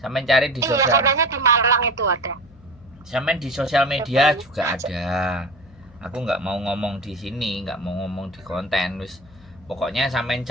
cari di Iya, sosial, katanya di Malang itu ada. sampean di sosial media juga ada. Aku nggak mau ngomong di sini, nggak mau ngomong di konten, wis pokoknya sampean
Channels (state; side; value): noise; left; hum, 24 dB below the sound